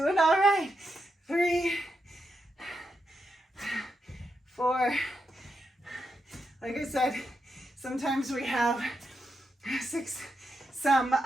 all right. 3, 4, like I said, sometimes we have 6, some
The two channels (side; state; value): both; normal; correlation 0.84